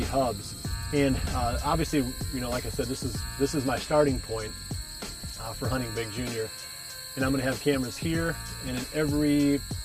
hubs. And obviously, like I said, this is my starting point for hunting Big Junior. And I'm going to have cameras here and in every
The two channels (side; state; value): both; identical; correlation 1.00